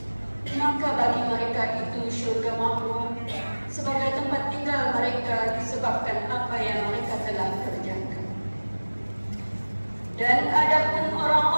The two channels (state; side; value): inverted; both; correlation -1.00